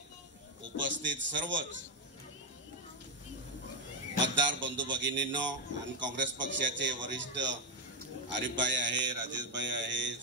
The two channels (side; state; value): both; normal; correlation 0.05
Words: उपस्थित सर्वच मतदार बंधू भगिनींनो आणि काँग्रेस पक्षाचे वरिष्ठ आरिफभाई आहे, राजेशभाई आहे,